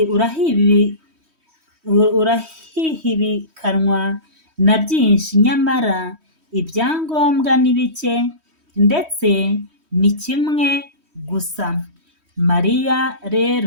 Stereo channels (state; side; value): late; left; 3.1 ms